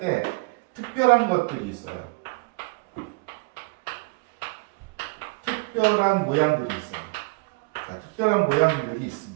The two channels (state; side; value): quieter; left; 28.5 dB